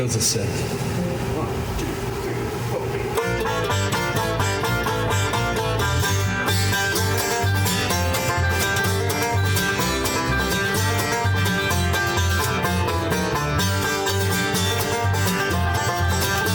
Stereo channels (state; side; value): identical; both; correlation 1.00